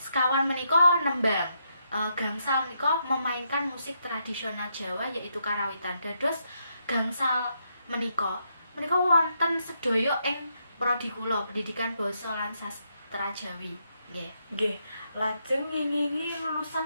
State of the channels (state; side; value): inverted; both; correlation -0.79